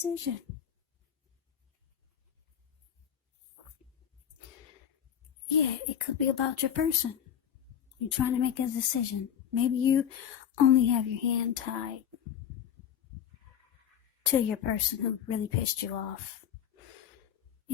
Yeah, it could be about your person. You're trying to make a decision. Maybe you only have your hand tied to your person who really pissed you off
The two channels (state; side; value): quieter; right; 9.2 dB